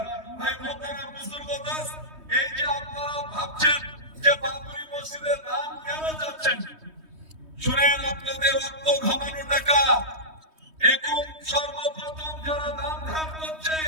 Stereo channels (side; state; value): left; late; 3.2 ms